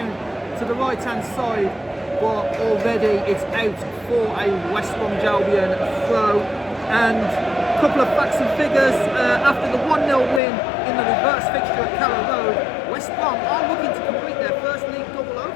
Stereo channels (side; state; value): right; drops out; at 10.4 s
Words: to the right hand side, but already it's out for a West Brom Albion throw. And a couple of facts and figures, after the 1-0 win in the reverse fixture at Carrow Road, West Brom are looking to complete their first league double